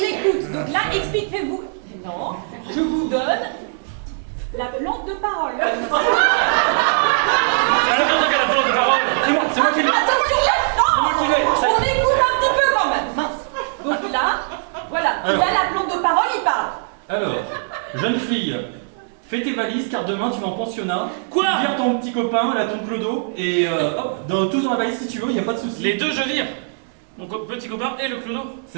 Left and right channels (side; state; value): left; silent; 65 dB below the other